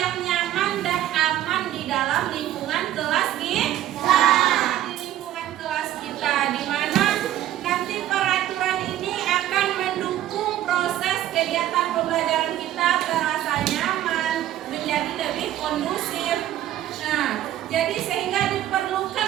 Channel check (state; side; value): quieter; left; 12.8 dB